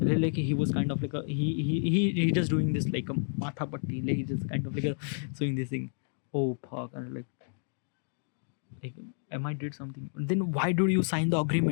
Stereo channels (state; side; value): silent; right; digital silence